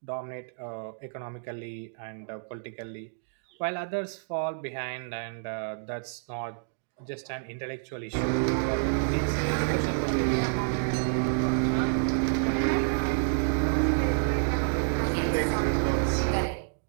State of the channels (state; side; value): silent; left; digital silence